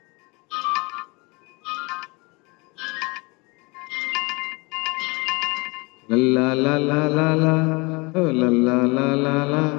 লা লা লা লা লা, ও লা লা লা লা লা,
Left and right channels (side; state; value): right; quieter; 27.4 dB